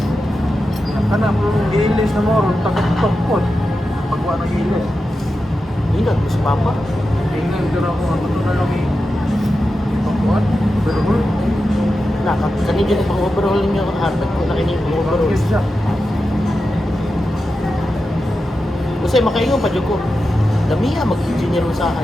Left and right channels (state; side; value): normal; both; correlation 0.91